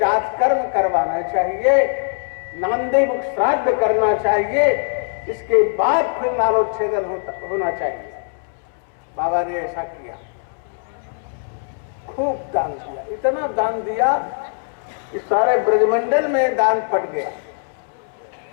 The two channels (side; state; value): right; silent; 65 dB below the other